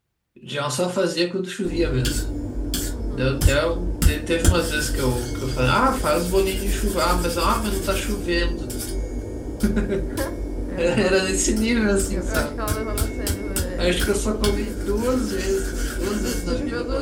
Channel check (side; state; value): both; identical; correlation 1.00